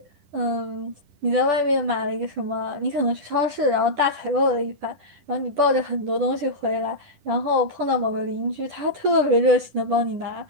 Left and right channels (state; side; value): late; left; 10 ms